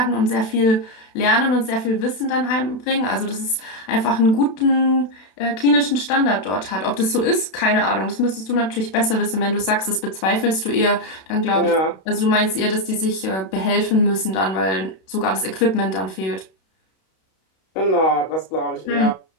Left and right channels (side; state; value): right; late; 32 ms